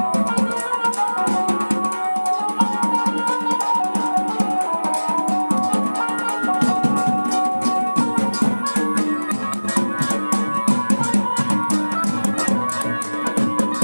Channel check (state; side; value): inverted; both; correlation -1.00